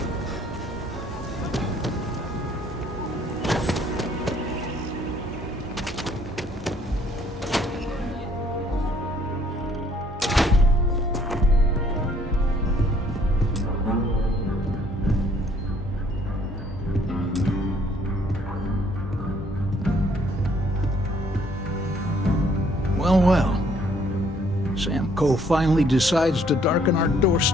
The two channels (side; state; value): both; normal; correlation 0.63